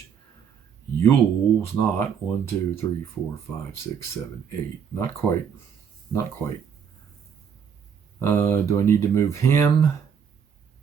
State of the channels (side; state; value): left; quieter; 7.4 dB